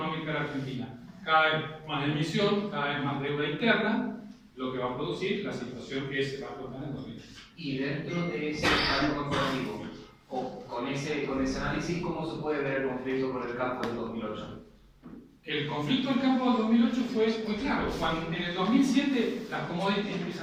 de la Argentina. Cada vez más emisión, cada vez más deuda interna, lo que va a producir la situación que se va a explotar en 2020. y dentro de ese pacto corporativo, o con ese análisis, ¿cómo se puede ver el conflicto con el campo del 2008? El conflicto del campo del 2008 fue muy claro. Cuando en el 2007 las commodities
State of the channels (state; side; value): identical; both; correlation 1.00